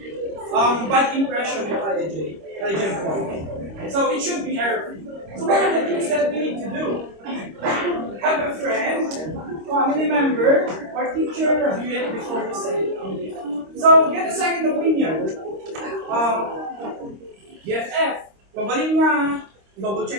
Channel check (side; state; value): left; late; 26 ms